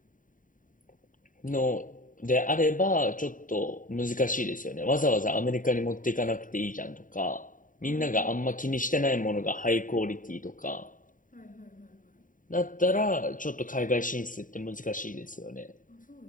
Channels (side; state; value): right; late; 0.39 ms